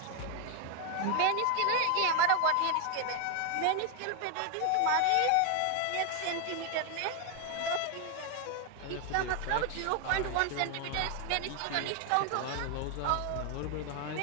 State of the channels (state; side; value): different; both; correlation 0.01